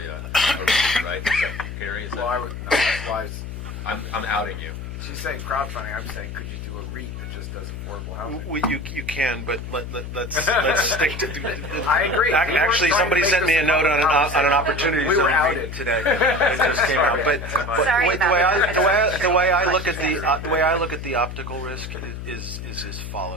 a REIT, right? Is that, Gary, is that? I'm outing you. She's saying crowdfunding. I'm saying, could you do a REIT that just does affordable housing? Well, you can, but let's stick to. I agree. Actually, somebody sent me a note on an opportunity. We were outed today. It just came out. But Sorry the way I look at Question. the way I look at the optical risk is as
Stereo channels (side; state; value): left; noise; hum, 8 dB below the sound